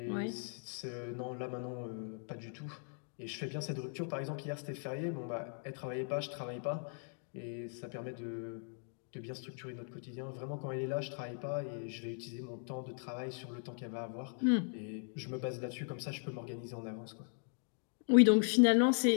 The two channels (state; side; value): silent; right; 52 dB below the other